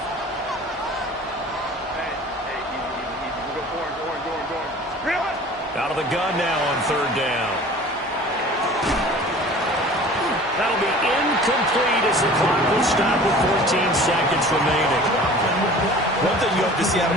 Out of the gun now on 3rd down. That'll be incomplete as the clock will stop with 14 seconds remaining. One thing you have to see out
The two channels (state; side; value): normal; both; correlation 0.44